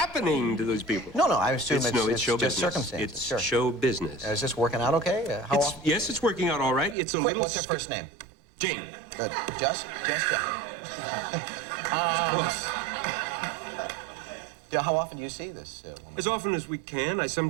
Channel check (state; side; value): drops out; left; at 7.0 s